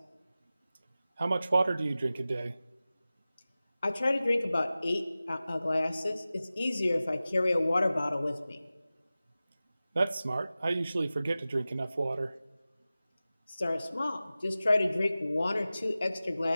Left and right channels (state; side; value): inverted; both; correlation -0.96